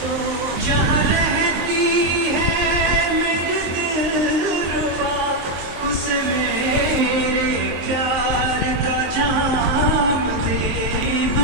जहाँ रहती है मेरे दिलरुबा उसे मेरे प्यार का जाम दे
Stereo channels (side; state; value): left; late; 23 ms